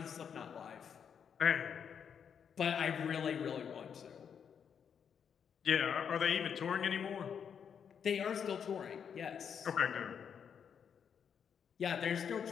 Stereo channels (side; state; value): right; quieter; 7.5 dB